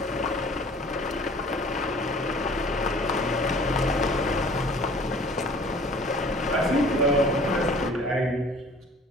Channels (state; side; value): normal; both; correlation 0.50